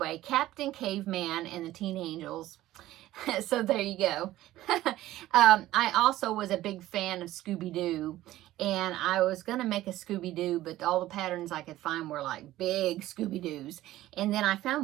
Captain Caveman and the Teen Angels. So there you go. I also was a big fan of Scooby-Doo, and I was going to make a Scooby-Doo, but all the patterns I could find were like big Scooby-Doos. And then I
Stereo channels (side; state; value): left; quieter; 15.2 dB